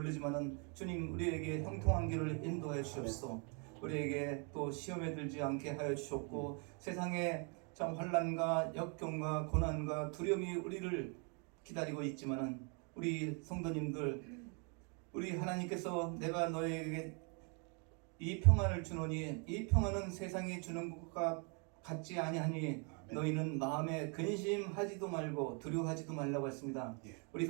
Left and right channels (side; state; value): left; quieter; 36.9 dB